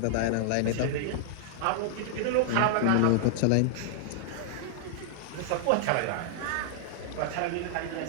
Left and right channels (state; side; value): different; both; correlation -0.01